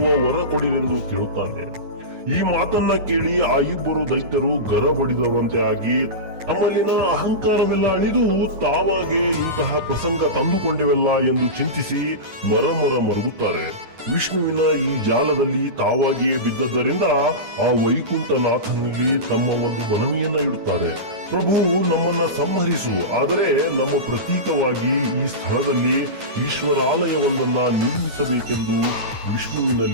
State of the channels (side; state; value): left; late; 9.4 ms